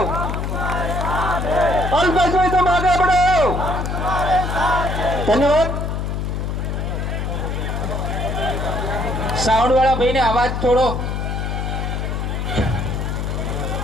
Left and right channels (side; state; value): left; noise; hum, 2 dB below the sound